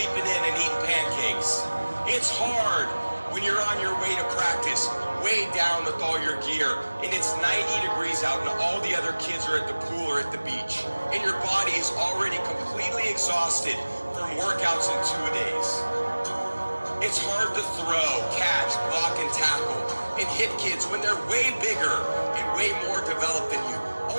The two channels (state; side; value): inverted; both; correlation -1.00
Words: in and eating pancakes. It's hard when you're on your way to practice, way down with all your gear, and it's 90 degrees out and all the other kids are at the pool or at the beach, and your body is already completely exhausted from workouts in 2 days. It's hard to throw, catch, block, and tackle, and hit kids when they're way bigger and way more developed than you,